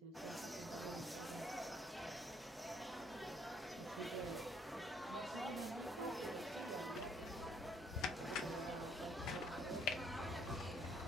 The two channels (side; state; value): both; normal; correlation 0.66